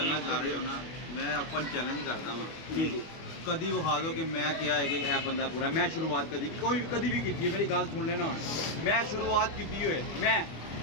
ਕਰ ਰਹੇ ਹੋ ਨਾ, ਮੈਂ ਓਪਨ ਚੈਲੰਜ ਕਰਦਾ ਵਾਂ, ਕਦੀ ਵਿਖਾ ਦਿਓ ਕਿ ਮੈਂ ਕਿਹਾ ਹੈ ਕਿ ਇਹ ਬੰਦਾ ਪੂਰਾ। ਮੈਂ ਸ਼ੁਰੂਆਤ ਕਦੀ ਵੀ ਕੀਤੀ ਹੈ, ਮੇਰੀ ਗੱਲ ਸੁਣ ਲੈਣਾ। ਮੈਂ ਸ਼ੁਰੂਆਤ ਕੀਤੀ ਹੋਏ,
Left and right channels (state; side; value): late; right; 25 ms